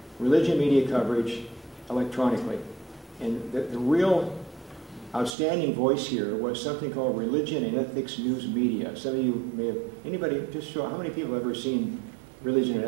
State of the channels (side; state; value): left; drops out; at 5.4 s